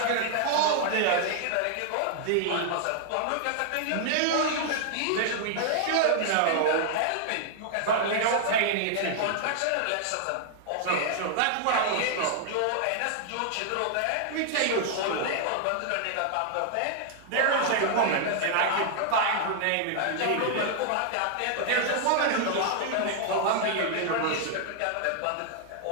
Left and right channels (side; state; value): both; different; correlation -0.01